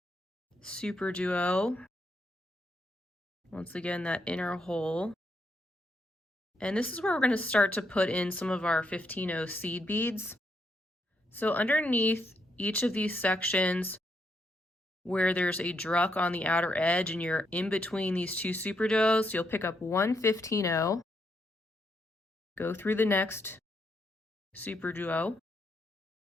SuperDuo. Once again, that inner hole. And this is where we're going to start to put in some of our 15-0 seed beads. So underneath each of these sections where there's a Druk on the outer edge and you're in between these 2 SuperDuos, you'll pick up one 15-0, go through the next SuperDuo.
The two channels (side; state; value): both; normal; correlation 0.78